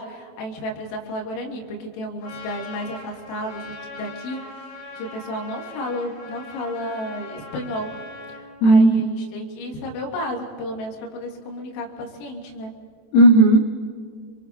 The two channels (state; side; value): late; right; 27 ms